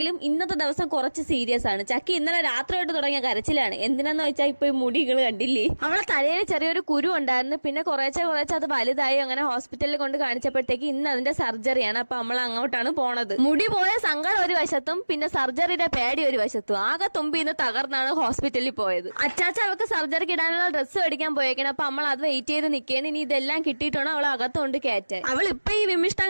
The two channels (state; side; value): inverted; both; correlation -1.00